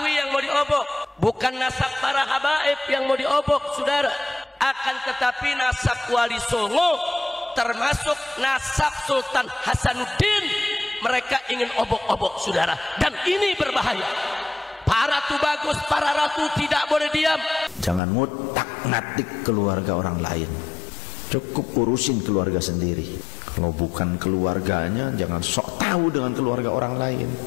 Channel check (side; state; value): right; drops out; at 18.0 s